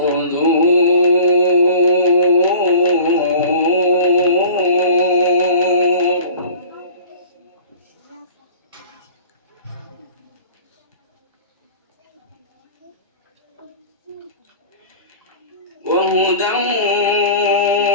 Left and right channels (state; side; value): inverted; both; correlation -0.41